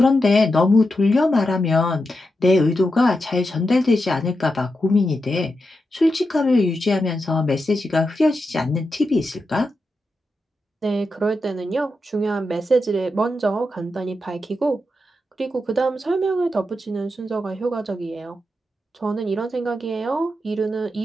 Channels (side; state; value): both; normal; correlation 0.87